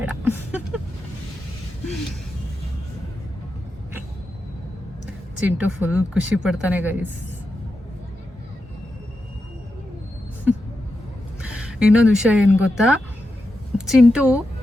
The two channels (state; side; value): normal; both; correlation 0.88